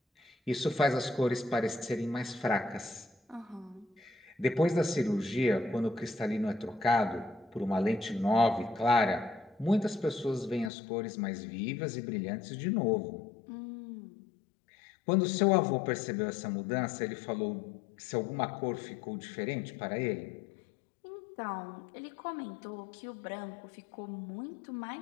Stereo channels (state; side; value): drops out; right; at 10.7 s